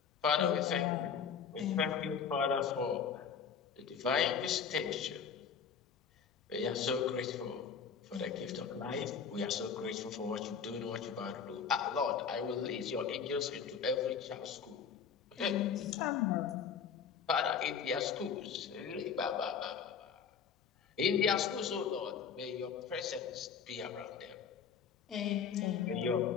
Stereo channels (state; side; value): quieter; right; 6.7 dB